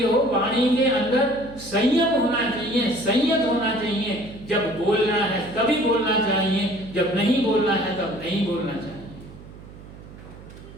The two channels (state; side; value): noise; right; hum, 17 dB below the sound